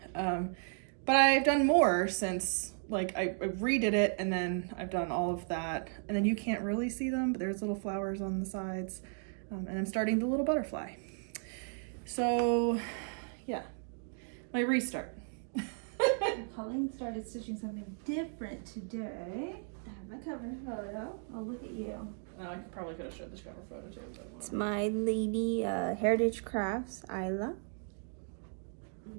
But I've done more since, like, I redid it, and then I've done all of that. And then you can't really see them, but there's little flowers on the sides. And I'm starting the little butterfly. So, yeah. My restart. Pauline started stitching something different today. I have my cover photo. Oh, look at you. I probably could have showed this cover photo too. It's my lady Heritage Crafts, Isla. I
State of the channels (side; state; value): left; silent; 54 dB below the other